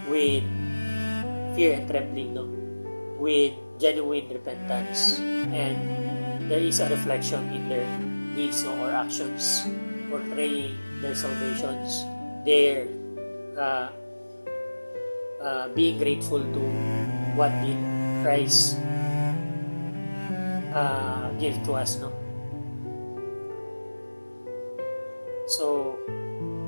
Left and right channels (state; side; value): inverted; both; correlation -1.00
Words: with fear and trembling, no, with genuine repentance, and there is a reflection in their deeds, no, or actions portraying their salvations, their being grateful to what did Christ give to us, no. So